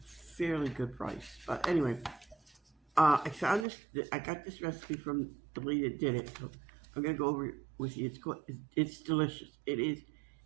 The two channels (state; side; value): drops out; left; at 3.7 s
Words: good price. But anyway, I found this. I got this recipe from the lady that did it. So I'm gonna go over it with you. It's delicious. It is